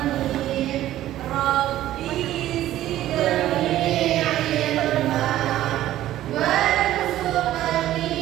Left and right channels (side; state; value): left; quieter; 13.7 dB